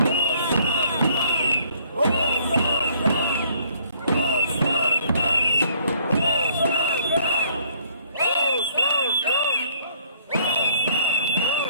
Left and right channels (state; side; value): inverted; both; correlation -0.62